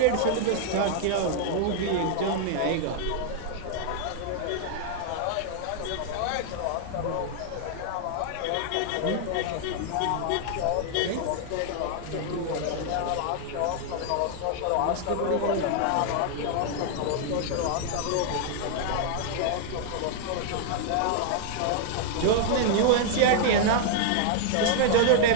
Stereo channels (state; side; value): different; both; correlation 0.00